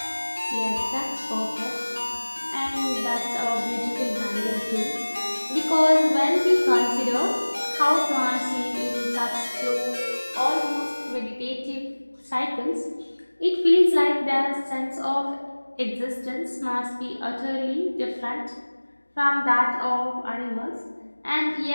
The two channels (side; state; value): both; inverted; correlation -1.00